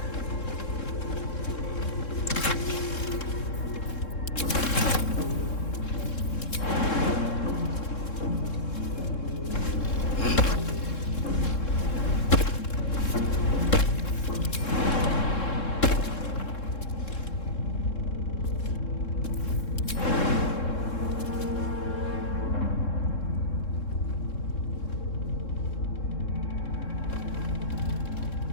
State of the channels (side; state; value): right; late; 3.7 ms